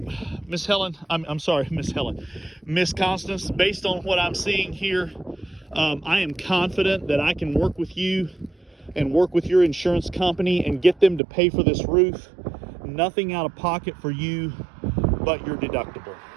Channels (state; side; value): drops out; left; at 11.2 s